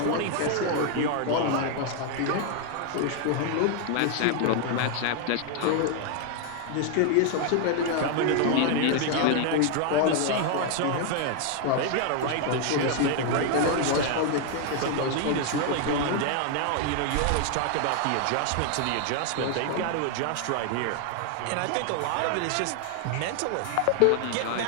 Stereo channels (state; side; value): different; both; correlation 0.00